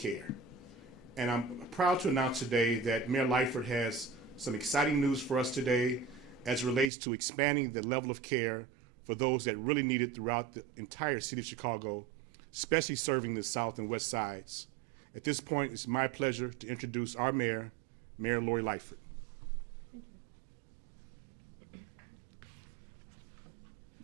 And I'm proud to announce today that Mayor Lightfoot has some exciting news for us today as it relates to expanding the level of care for those that really need it throughout the entire city of Chicago, especially serving the south and west sides. At this point, it's my pleasure to introduce our mayor, Mayor Lori Lightfoot.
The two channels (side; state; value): left; drops out; at 6.9 s